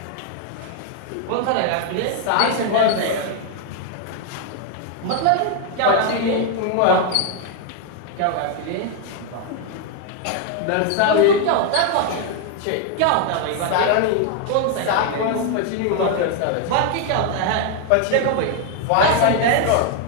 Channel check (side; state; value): both; different; correlation 0.00